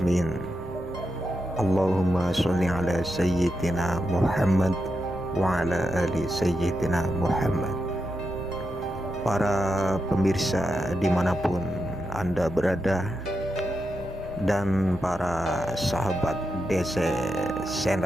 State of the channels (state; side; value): normal; both; correlation 0.86